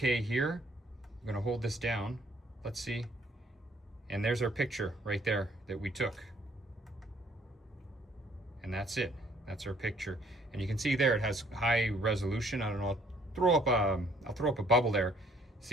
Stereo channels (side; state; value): both; normal; correlation 0.63